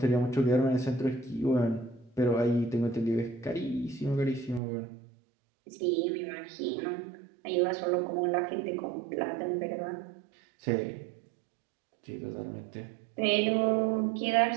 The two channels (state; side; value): drops out; left; at 4.6 s